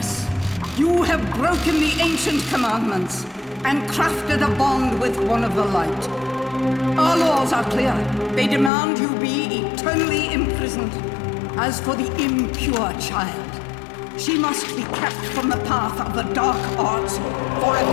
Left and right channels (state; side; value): drops out; right; at 8.7 s